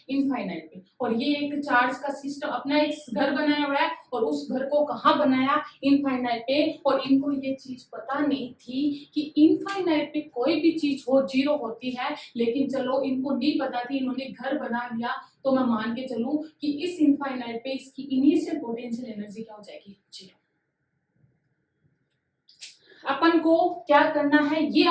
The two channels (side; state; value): both; identical; correlation 1.00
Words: इनफाइनाइट पे। और ये एक चार्ज का सिस्टम अपना एक घर बनाया हुआ है, और उस घर को कहाँ बनाया, इनफाइनाइट पे। और इनको ये चीज पता नहीं थी कि इनफाइनाइट पे कोई भी चीज हो जीरो होती है, लेकिन चलो इनको नहीं पता थी, इन्होंने घर बना लिया। तो मैं मान के चलूं कि इस इनफाइनाइट पे इसकी इनिशियल पोटेंशियल एनर्जी क्या हो जाएगी, जीरो। अपन को क्या करना है, ये